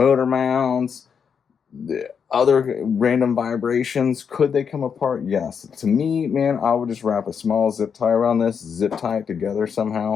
mounts, the other random vibrations. Could they come apart? Yes. To me, man, I would just wrap a small zip tie around this, zip tie it together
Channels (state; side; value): quieter; right; 6.8 dB